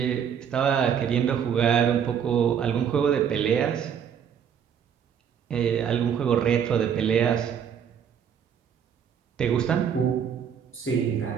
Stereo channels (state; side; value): quieter; left; 8.1 dB